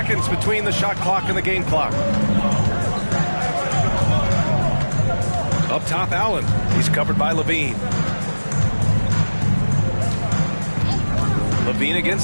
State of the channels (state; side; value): inverted; both; correlation -1.00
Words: between the shot clock and the game clock. Up top, Allen. He's covered by Levine. Levine